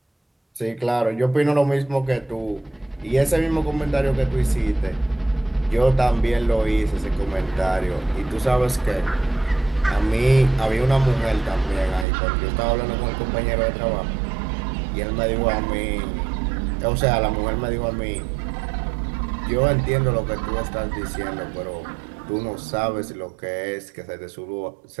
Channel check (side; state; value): left; drops out; at 12.1 s